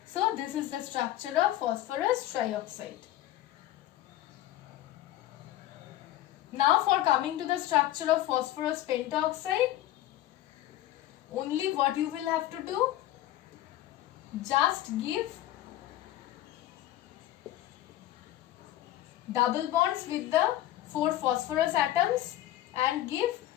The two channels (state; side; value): quieter; right; 14.0 dB